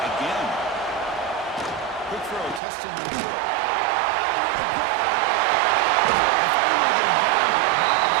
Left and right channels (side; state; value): left; drops out; at 2.6 s